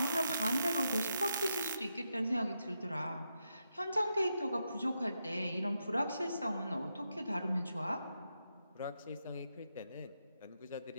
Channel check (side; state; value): both; inverted; correlation -0.84